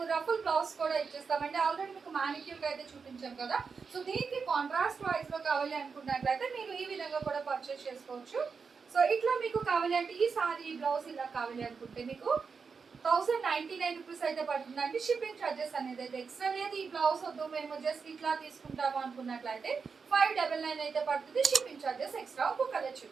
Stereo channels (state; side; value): quieter; left; 5.4 dB